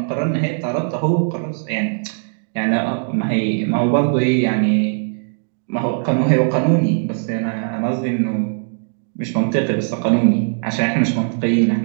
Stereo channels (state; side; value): silent; left; digital silence